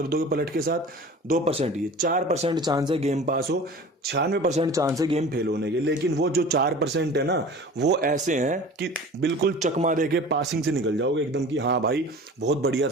दोगे पलट के साथ, 2%, ये 4% चांस है गेम पास हो, 96% चांस है गेम फेल होने के। लेकिन वो जो 4% है ना, वो ऐसे हैं कि बिल्कुल चकमा दे के पासिंग से निकल जाओगे एकदम कि हाँ भाई बहुत बढ़िया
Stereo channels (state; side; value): normal; both; correlation 0.40